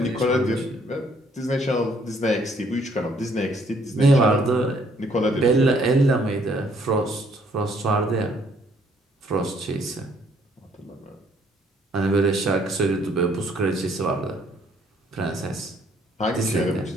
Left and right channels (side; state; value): both; normal; correlation 0.65